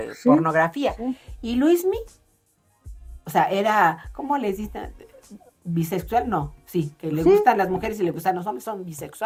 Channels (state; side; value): identical; both; correlation 1.00